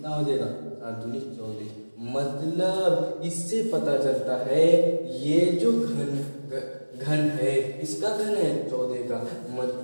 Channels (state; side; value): inverted; both; correlation -1.00